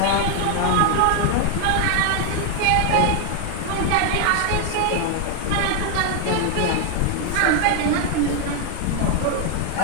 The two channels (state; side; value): different; both; correlation 0.00